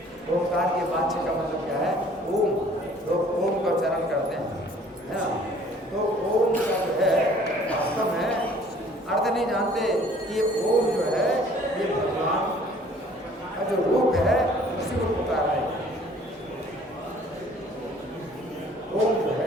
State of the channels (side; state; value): both; normal; correlation 0.54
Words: ओंकार के वाच्य का मतलब क्या है? ओम। लोग ओम का उच्चारण करते हैं, है ना? तो ओम का जो है वास्तव में अर्थ नहीं जानते कि ओम जो है ये भगवान का जो रूप है उसी को पुकार रहे हैं। ओम जो